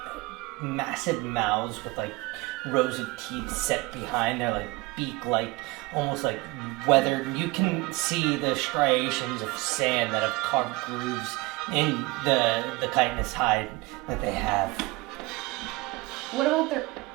massive mouths with like rows of teeth set behind. They're like beak-like, almost like weathered. You can see the striations of sand that have carved grooves in the chitinous hide that they have. What about their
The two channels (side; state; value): left; quieter; 22.4 dB